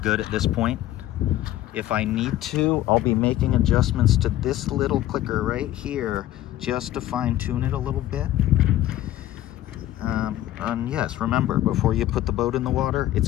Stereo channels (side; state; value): right; quieter; 14.0 dB